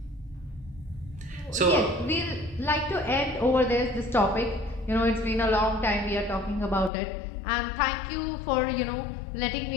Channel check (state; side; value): drops out; right; at 6.9 s